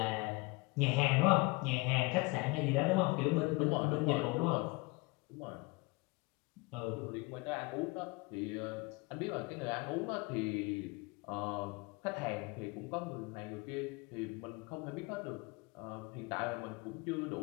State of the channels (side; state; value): right; quieter; 25.9 dB